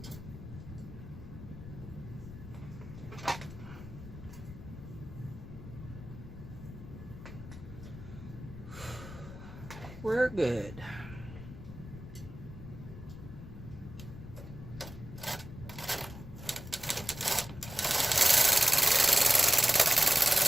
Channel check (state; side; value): noise; left; rumble, 13 dB below the sound